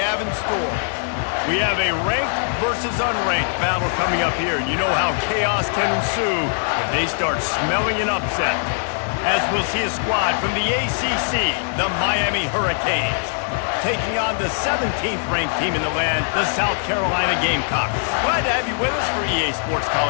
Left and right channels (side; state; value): right; silent; digital silence